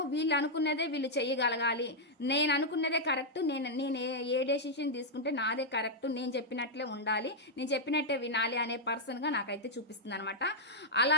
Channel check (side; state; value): both; normal; correlation -0.04